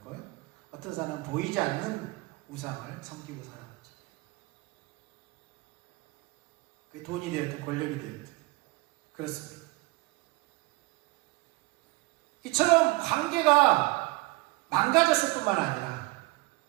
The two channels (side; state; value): left; quieter; 23.0 dB